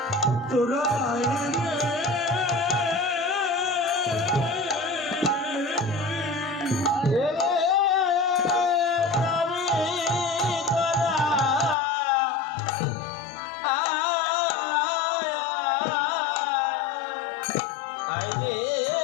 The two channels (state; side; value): drops out; right; at 11.8 s